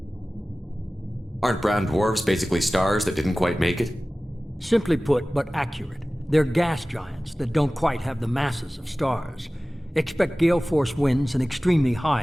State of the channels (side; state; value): both; normal; correlation 0.97